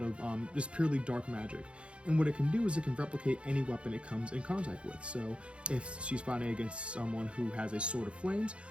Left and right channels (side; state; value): left; late; 0.059 ms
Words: just purely dark magic. And what it can do is it can replicate any weapon it comes in contact with. So if she's fighting against someone who has a sword of flames,